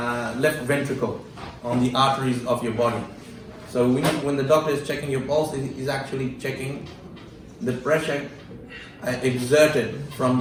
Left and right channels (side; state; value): both; identical; correlation 1.00